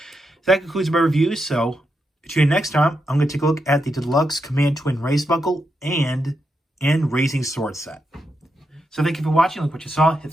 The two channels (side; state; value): both; normal; correlation 0.84